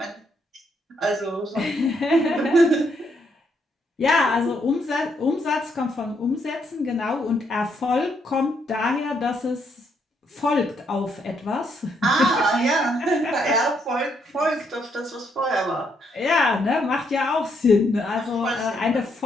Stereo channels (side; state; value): both; normal; correlation 0.75